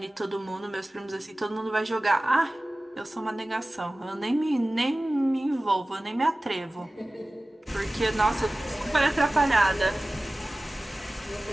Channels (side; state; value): both; normal; correlation 0.97